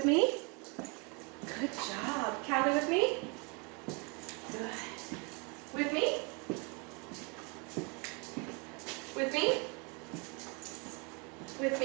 me. Good job. Callie with me. Good. With me. With me. With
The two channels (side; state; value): left; quieter; 31.9 dB